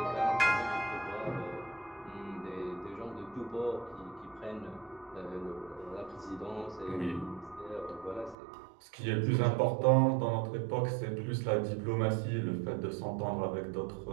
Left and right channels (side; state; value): left; drops out; at 8.3 s